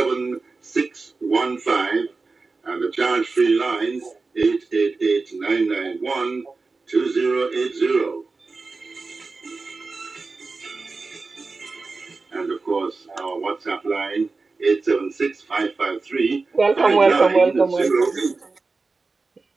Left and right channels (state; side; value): quieter; left; 3.9 dB